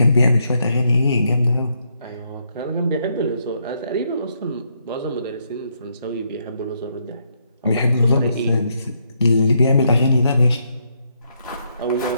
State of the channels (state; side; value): inverted; both; correlation -0.76